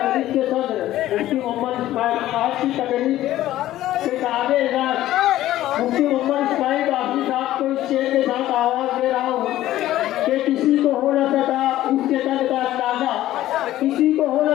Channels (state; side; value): quieter; right; 14.2 dB